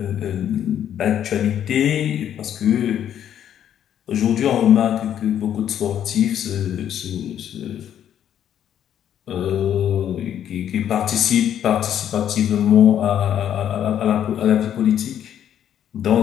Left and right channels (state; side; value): quieter; right; 10.0 dB